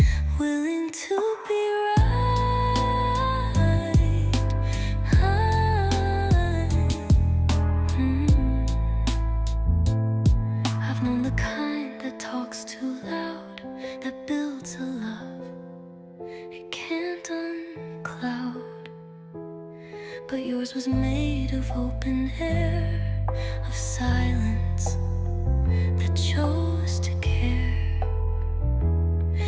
willing to be right. I've known the kind that talks too loud, that builds a love it can't uncloud. But yours was made of open air, of silence that chose to care.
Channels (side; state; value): both; identical; correlation 1.00